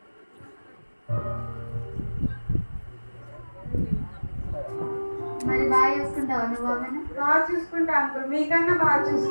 మరి బాగా చూసుకుంటావా నువ్వు ఆమెను? బాగా చూసుకుంటా అంకుల్, మీకన్నా బాగా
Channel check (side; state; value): both; inverted; correlation -1.00